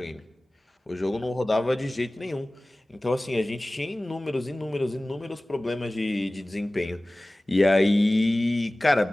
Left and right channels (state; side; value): normal; both; correlation 0.98